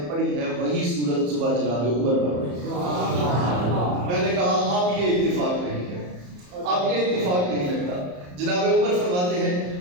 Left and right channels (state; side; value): late; left; 34 ms